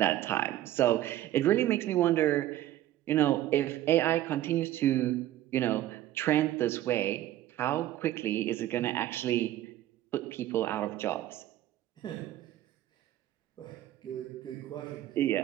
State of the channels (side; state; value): left; quieter; 13.8 dB